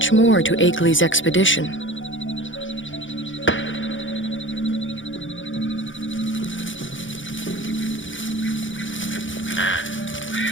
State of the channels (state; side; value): late; right; 0.56 ms